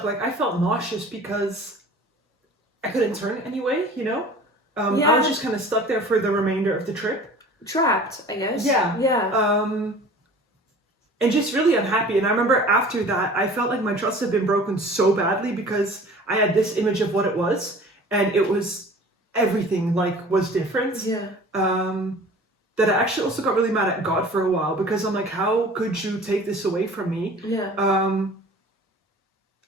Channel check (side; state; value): both; normal; correlation 0.44